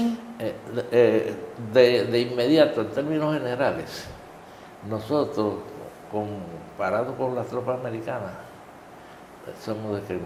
de inmediato, en términos generales, nosotros, comparados con las tropas americanas, somos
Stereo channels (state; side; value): identical; both; correlation 1.00